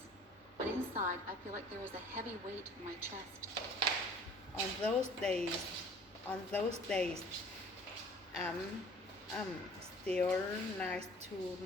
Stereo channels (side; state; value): both; normal; correlation 0.50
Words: but inside I feel like there is a heavy weight in my chest. On those days, I'm still nice to